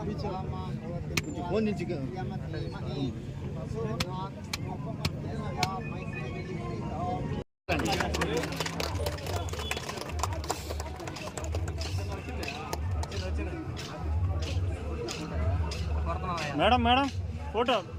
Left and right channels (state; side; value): identical; both; correlation 1.00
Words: ఫోన్ నుంచి madam madam photo